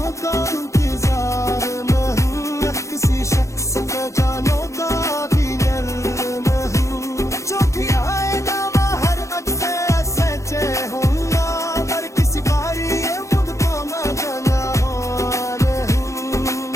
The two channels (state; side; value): late; right; 0.15 ms